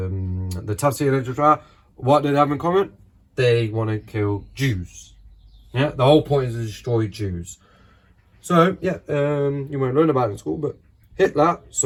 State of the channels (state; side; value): identical; both; correlation 1.00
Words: Tafsir literature, what do they have in common? They want to kill Jews. Yeah, the whole point is to destroy Jews. So, yeah, you won't learn about it in school, but Hitler,